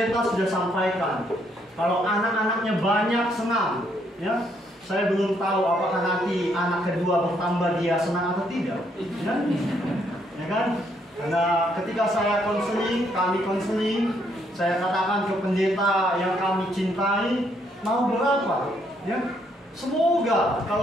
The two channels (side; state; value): both; normal; correlation 0.72